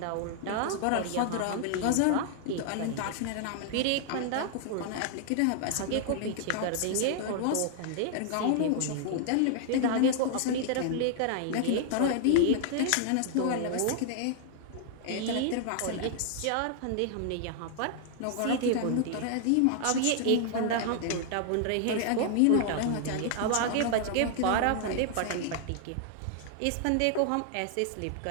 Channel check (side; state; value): both; different; correlation 0.00